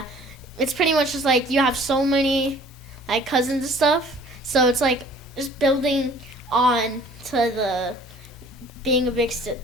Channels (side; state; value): both; normal; correlation 0.52